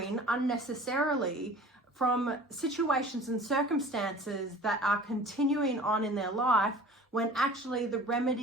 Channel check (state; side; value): normal; both; correlation 0.44